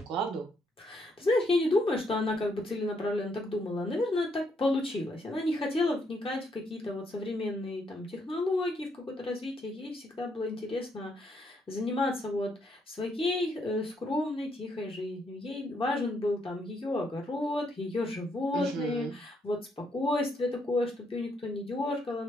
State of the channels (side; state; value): both; normal; correlation 0.74